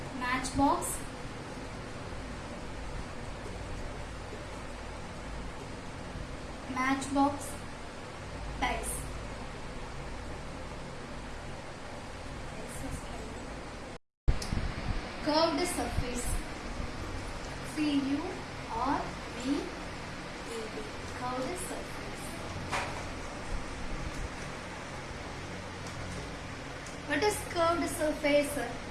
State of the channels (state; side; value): identical; both; correlation 1.00